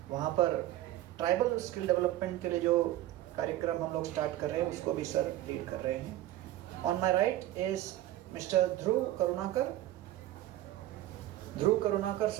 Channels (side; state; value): left; quieter; 14.5 dB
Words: वहाँ पर ट्राइबल स्किल डेवलपमेंट के लिए जो कार्यक्रम हम लोग स्टार्ट कर रहे हैं उसको भी सर लीड कर रहे हैं। On my right is mister Dhruv Karunakar. Dhruv Karunakar